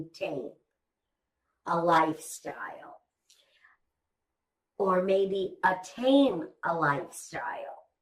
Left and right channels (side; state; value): both; identical; correlation 1.00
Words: a lifestyle or maybe attain a lifestyle